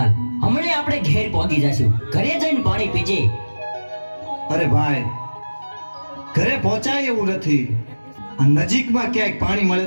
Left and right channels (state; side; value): inverted; both; correlation -1.00